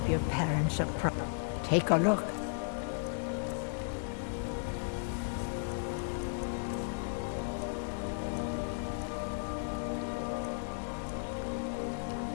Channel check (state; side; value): silent; right; digital silence